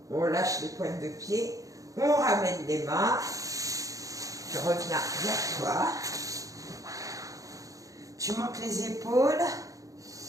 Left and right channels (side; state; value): left; late; 0.17 ms